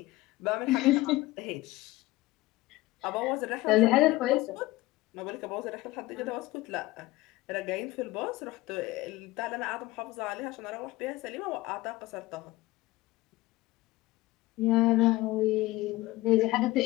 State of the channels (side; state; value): right; quieter; 18.8 dB